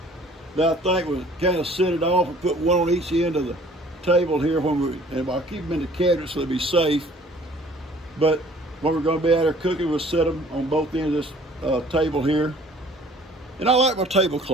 that I think will kind of set it off and put one on each end of the table here and I'll keep them in the cabinet so they'll be safe. But when we're going to be out there cooking, we'll set them on both ends of this table here. And I like my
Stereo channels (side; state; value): both; normal; correlation 0.53